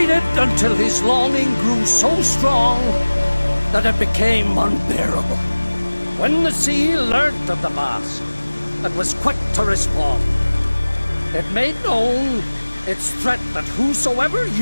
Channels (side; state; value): both; inverted; correlation -1.00